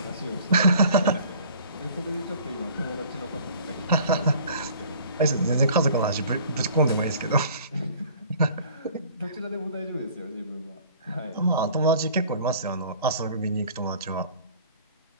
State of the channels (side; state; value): both; inverted; correlation -0.50